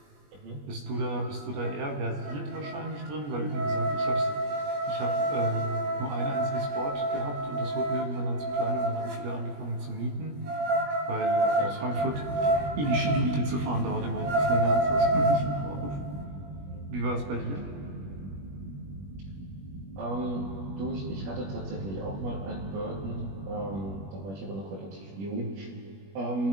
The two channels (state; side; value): late; left; 21 ms